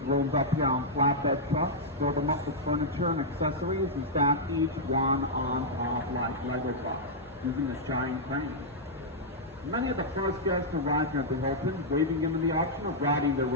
up here on flatbed trucks, filled them up with furniture and accessories, and stacked each one on top like Lego blocks, using this giant crane. Many of the first guests arrived at the Hilton, waving them in the option of riding their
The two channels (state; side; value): normal; both; correlation -0.07